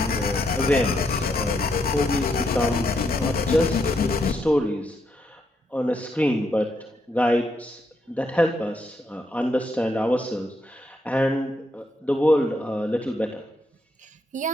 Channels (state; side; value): normal; both; correlation 0.78